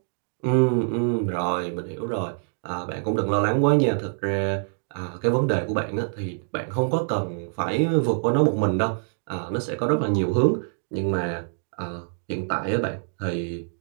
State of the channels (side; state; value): left; silent; digital silence